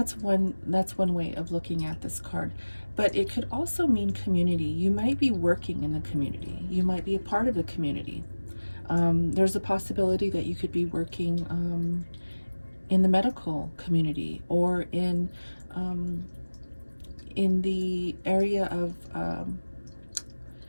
one way of looking at this card. But it could also mean community. You might be working in the community. You might be a part of the community. There's a possibility that you could be working in the medical community, or in the area of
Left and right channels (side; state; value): both; inverted; correlation -1.00